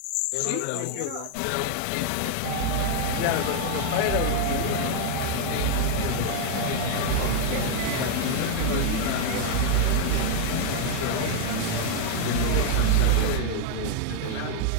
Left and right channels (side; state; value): both; different; correlation 0.00